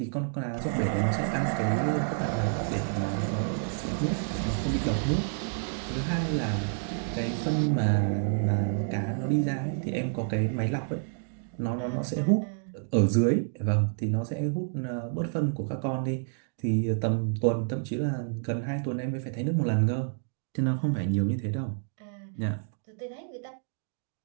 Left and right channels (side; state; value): left; silent; digital silence